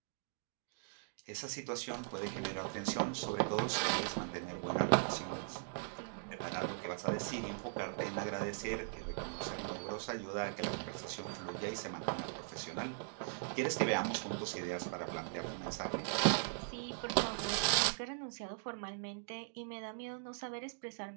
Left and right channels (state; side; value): silent; left; digital silence